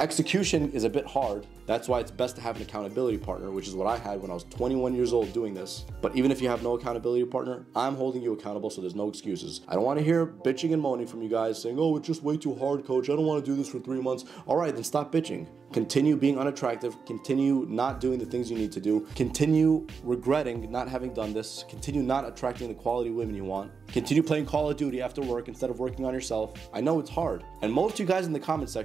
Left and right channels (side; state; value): left; quieter; 5.5 dB